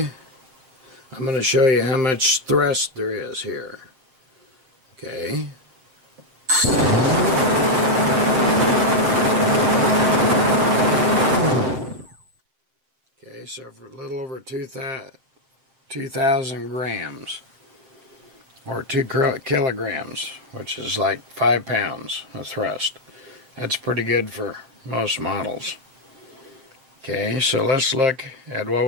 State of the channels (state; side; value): late; left; 7.6 ms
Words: I'm going to show you how much thrust there is here. Okay. Okay, so for a little over 2,000 grams, or 2 kilograms, which is like 5 pounds of thrust. That's pretty good for most models. Okay, so let's look at what